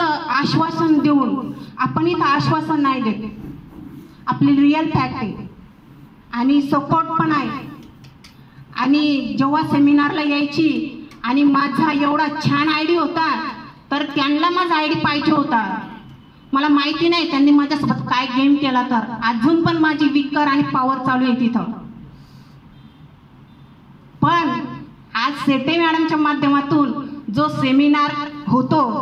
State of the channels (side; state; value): both; identical; correlation 1.00